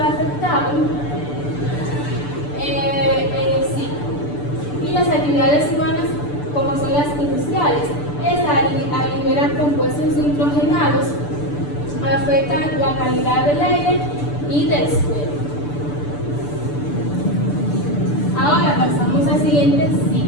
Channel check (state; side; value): late; right; 6.8 ms